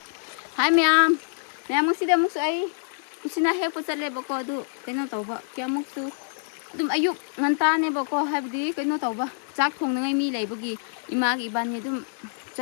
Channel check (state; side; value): silent; right; digital silence